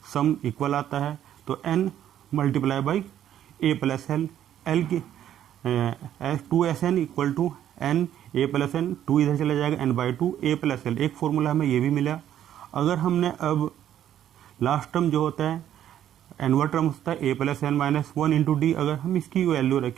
सम इक्वल आता है। तो n multiply by A plus L, L की 2SN equal to n A plus N, 2 इधर चला जाएगा, n/2 ए प्लस एल। एक फॉर्मूला हमें ये भी मिला। अगर हमने अब लास्ट टर्म जो होता है एनवा टर्म होता है a plus N minus 1 into d, अगर हम इसकी वैल्यू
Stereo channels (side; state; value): left; quieter; 10.9 dB